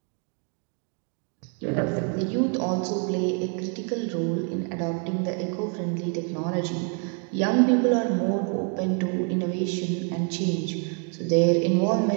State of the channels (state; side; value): quieter; left; 38.6 dB